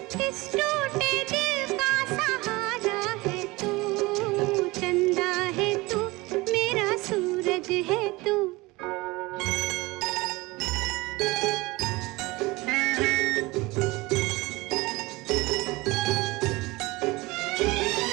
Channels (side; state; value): left; quieter; 22.2 dB